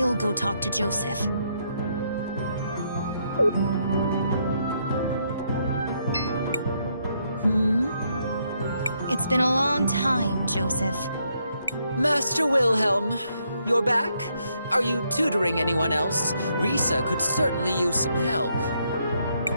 go talk to Joseph. It's been a long time, Joseph. Master Wilhelm, you're back? Are you tutoring anyone else? Risa could certainly use some help.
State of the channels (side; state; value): both; inverted; correlation -0.75